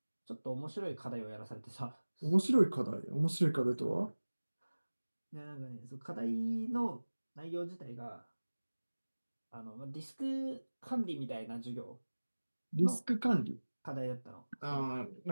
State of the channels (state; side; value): inverted; both; correlation -1.00